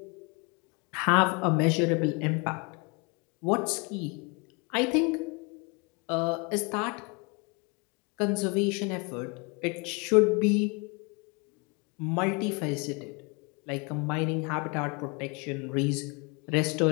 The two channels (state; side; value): quieter; right; 30.5 dB